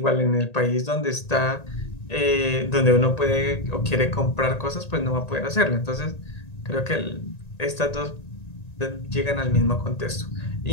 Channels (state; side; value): late; right; 1.9 ms